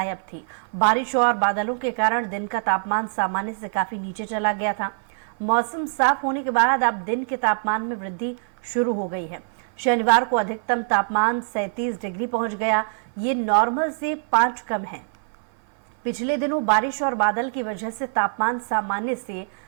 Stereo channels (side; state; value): left; silent; 57 dB below the other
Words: थी। बारिश और बादलों के कारण दिन का तापमान सामान्य से काफी नीचे चला गया था। मौसम साफ होने के बाद अब दिन के तापमान में वृद्धि शुरू हो गई है। शनिवार को अधिकतम तापमान 37 डिग्री पहुंच गया। ये नॉर्मल से 5 कम है। पिछले दिनों बारिश और बादल की वजह से तापमान सामान्य से